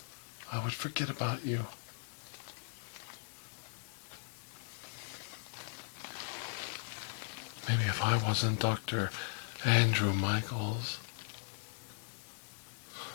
I would forget about you. Maybe if I wasn't Dr. Andrew Michaels,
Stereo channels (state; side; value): silent; right; digital silence